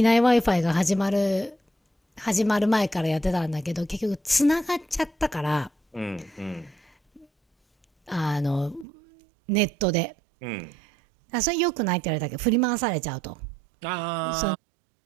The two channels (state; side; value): drops out; left; at 8.8 s